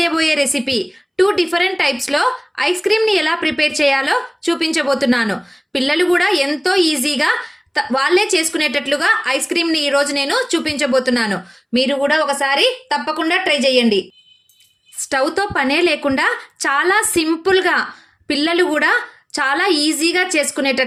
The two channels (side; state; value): both; identical; correlation 1.00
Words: రెసిపీ 2 డిఫరెంట్ టైప్స్లో ఐస్ క్రీమ్ని ఎలా ప్రిపేర్ చేయాలో చూపించబోతున్నాను. పిల్లలు కూడా ఎంతో ఈజీగా వాళ్ళే చేసుకునేటట్లుగా ఐస్ క్రీమ్ని ఈరోజు నేను చూపించబోతున్నాను. మీరు కూడా ఒకసారి తప్పకుండా ట్రై చేయండి. స్టవ్తో పనే లేకుండా చాలా సింపుల్గా పిల్లలు కూడా చాలా ఈజీగా